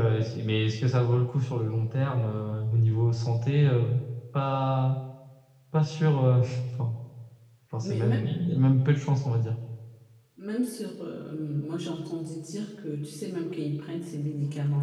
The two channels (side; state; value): both; identical; correlation 1.00